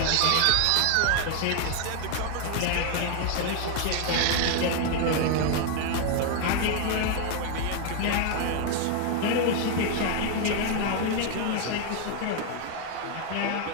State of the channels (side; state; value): both; different; correlation 0.00